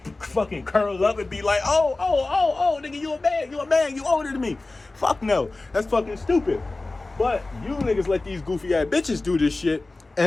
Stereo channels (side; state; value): right; quieter; 3.2 dB